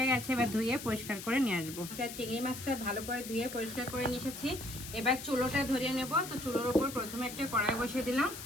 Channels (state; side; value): noise; left; hiss, 10 dB below the sound